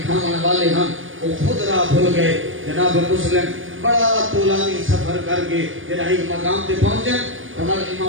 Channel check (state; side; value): late; left; 0.58 ms